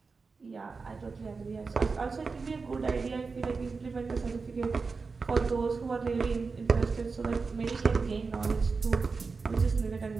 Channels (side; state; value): left; quieter; 4.5 dB